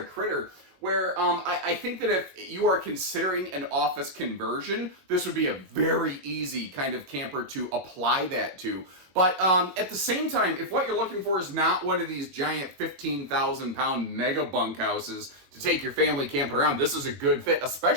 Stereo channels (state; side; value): late; left; 22 ms